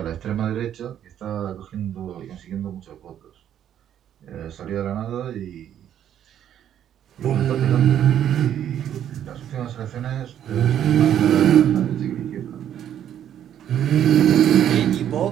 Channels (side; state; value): left; quieter; 10.2 dB